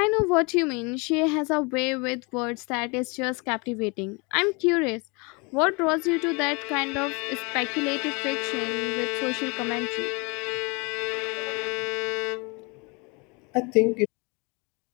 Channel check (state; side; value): quieter; right; 29.9 dB